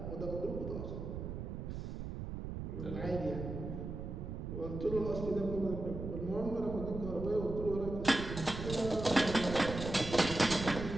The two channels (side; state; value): right; noise; rumble, 6 dB below the sound